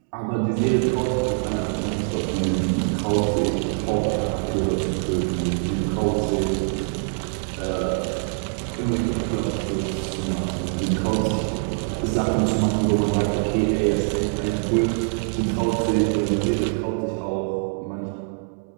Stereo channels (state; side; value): silent; left; 63 dB below the other